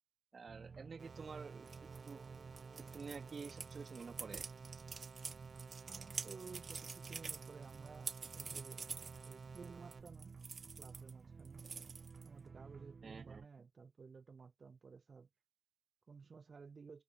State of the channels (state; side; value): quieter; left; 4.8 dB